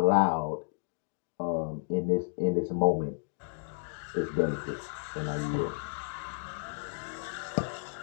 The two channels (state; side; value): silent; right; digital silence